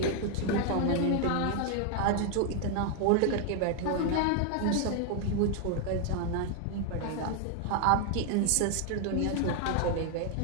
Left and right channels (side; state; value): both; different; correlation 0.01